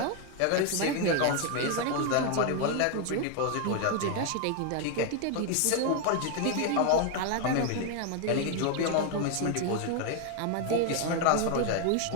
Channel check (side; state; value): both; different; correlation 0.01